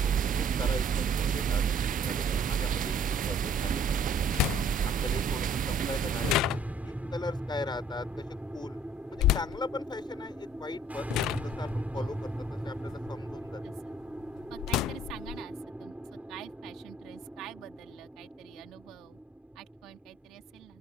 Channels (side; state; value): both; normal; correlation 0.58